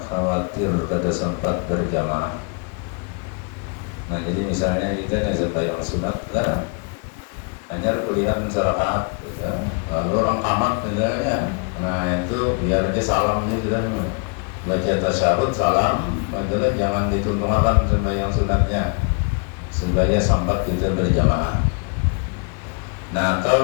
khawatir pada sempat berjamaah. Nah jadi misalnya kita sembahyang sunat kan hanya pilihan serakaat gitu. Lalu orang tamat misalnya, nah itu biar dia salam gitu kan, baca tasyahud salam, itulah jangan dituntungan sembahyang sunatnya supaya sempat kita berjamaah. Nah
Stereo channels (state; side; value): quieter; right; 35.6 dB